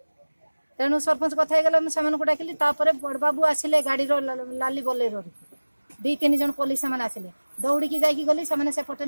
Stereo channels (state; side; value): inverted; both; correlation -1.00